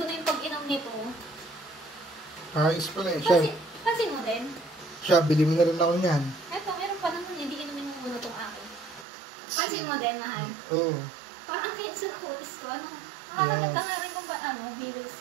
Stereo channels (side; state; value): left; drops out; at 9.1 s